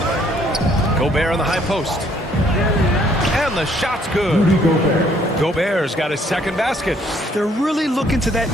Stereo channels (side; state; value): both; normal; correlation 0.65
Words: Gobert on the high post. And the shot's good. Gobert's got his second basket. They're really looking to that